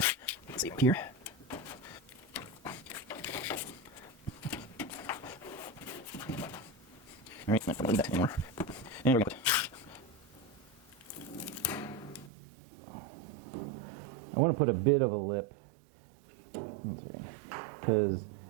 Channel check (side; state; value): left; drops out; at 12.3 s